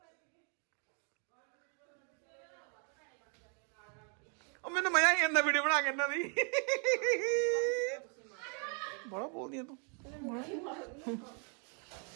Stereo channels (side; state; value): left; quieter; 39.3 dB